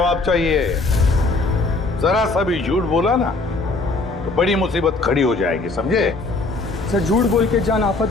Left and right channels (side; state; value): right; quieter; 3.4 dB